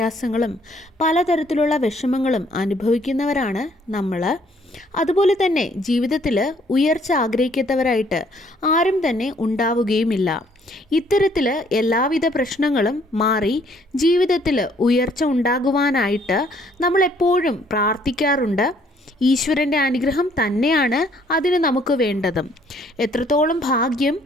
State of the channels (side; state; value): both; normal; correlation 0.63